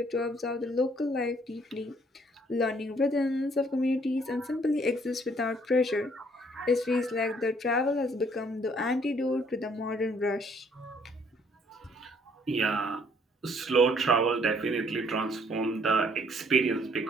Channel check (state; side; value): normal; both; correlation 0.63